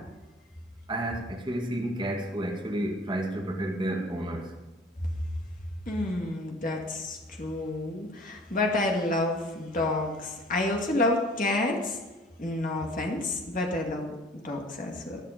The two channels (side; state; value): both; normal; correlation 0.51